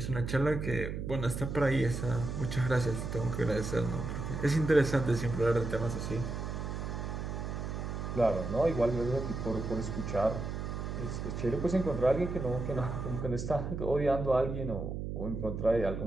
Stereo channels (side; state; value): right; noise; hum, 4 dB below the sound